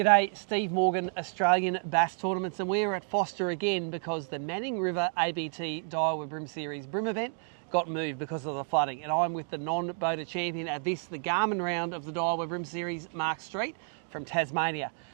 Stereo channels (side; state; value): left; silent; 56 dB below the other